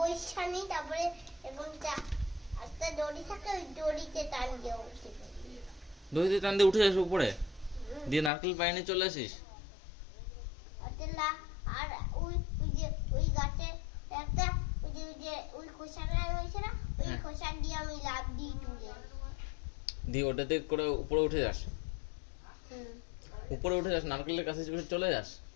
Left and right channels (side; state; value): right; drops out; at 8.3 s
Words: তারপরে এখন একটা দড়ি থাকে, ওই দড়িতে টান দিয়ে উঠে যাই। দড়িতে টান দিয়ে উঠে যাস উপরে, দিয়ে নারকেল পাইনে চলে আসিস? আর ওই যে ওই গাছে একটা ওই খোসাটা রয়েছে না, ওই খোসা দিয়ে আমি লাফ দিই তুলে দিয়ে ওটাতে করে উপরে উঠে যাস? উপরে উঠে যাস, নারকেলের কাছে চলে যাস,